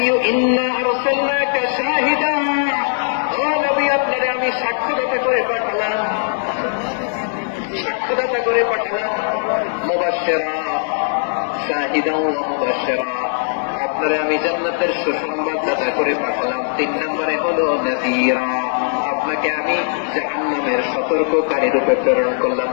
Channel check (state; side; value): silent; right; digital silence